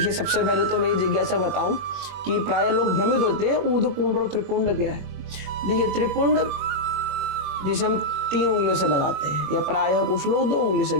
सबसे पहले तो मैं ये जिज्ञासा बताऊं कि प्राय लोग भ्रमित होते हैं ऊर्ध्वपुंड और त्रिपुंड क्या है। देखिए, त्रिपुंड जिसे हम 3 उंगलियों से लगाते हैं, या प्रायः कुछ लोग 2 उंगली से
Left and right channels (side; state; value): left; late; 21 ms